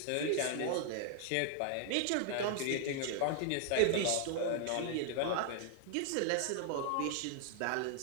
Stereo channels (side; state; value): both; different; correlation 0.00